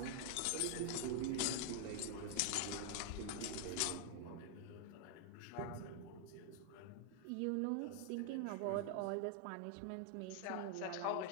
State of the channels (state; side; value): different; both; correlation 0.00